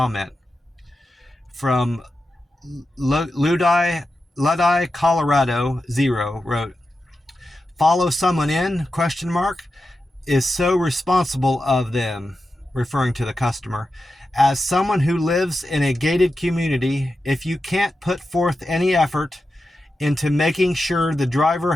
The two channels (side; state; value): both; normal; correlation 0.90